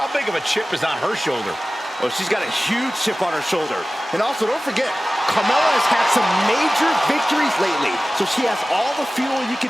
big of a chip is on her shoulder? Well, she's got a huge chip on her shoulder. And also, don't forget, Carmella has had some major victories lately, so she has all the fuel you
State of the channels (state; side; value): normal; both; correlation 0.96